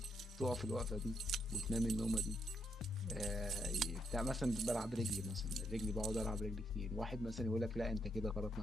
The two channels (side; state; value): both; normal; correlation 0.77